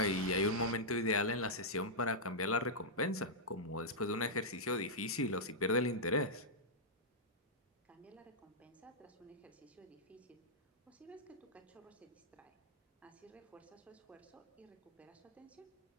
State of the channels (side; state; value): both; normal; correlation -0.09